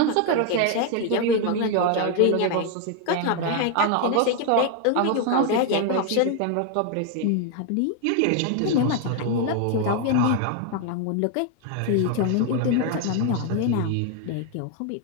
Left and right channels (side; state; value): both; different; correlation 0.01